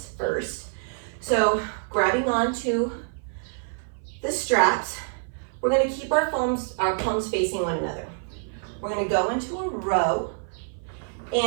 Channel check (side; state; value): left; silent; 56 dB below the other